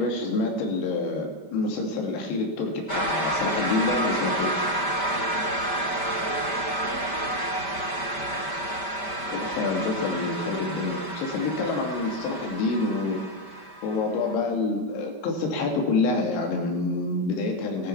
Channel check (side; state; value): right; late; 5.1 ms